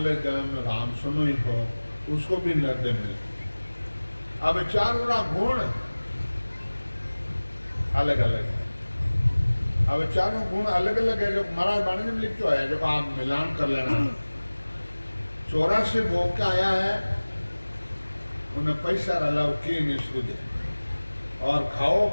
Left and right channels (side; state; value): both; inverted; correlation -1.00